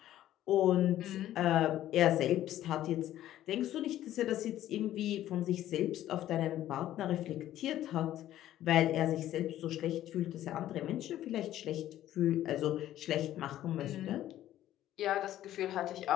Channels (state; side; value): quieter; right; 13.0 dB